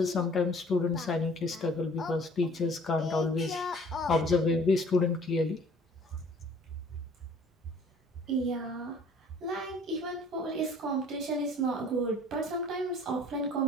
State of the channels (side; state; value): both; normal; correlation 0.53